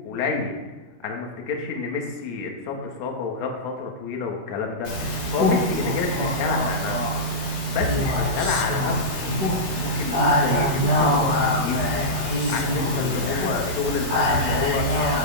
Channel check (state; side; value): late; left; 16 ms